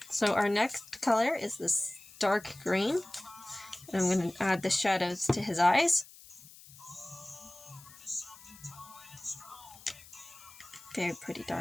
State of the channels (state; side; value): noise; left; hiss, 20 dB below the sound